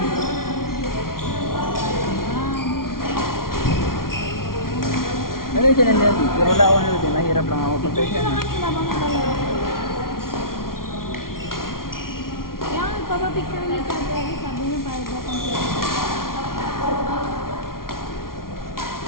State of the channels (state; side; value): late; right; 0.92 ms